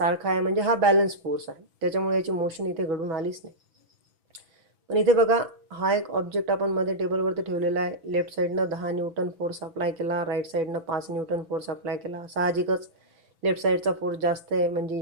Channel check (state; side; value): late; left; 6.0 ms